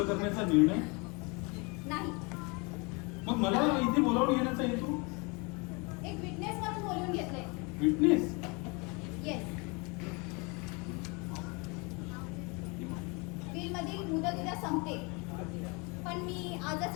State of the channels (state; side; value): quieter; right; 29.7 dB